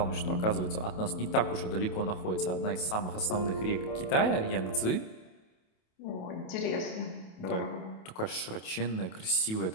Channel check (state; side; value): late; right; 28 ms